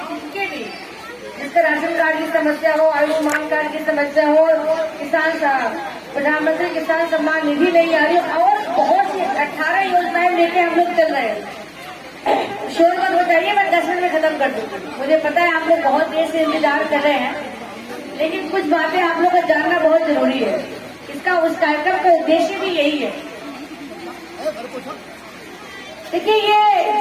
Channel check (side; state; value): both; identical; correlation 1.00